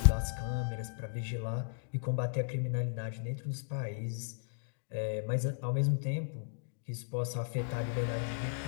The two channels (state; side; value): silent; right; digital silence